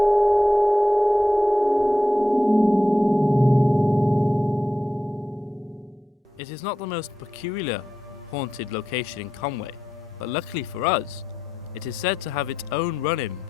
It is not the most peculiar haunted location in Conwy, but luckily for us, it is said to have its own run-in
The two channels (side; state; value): both; normal; correlation 0.87